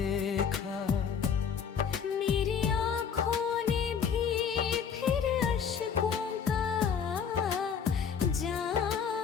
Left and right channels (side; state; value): right; quieter; 7.0 dB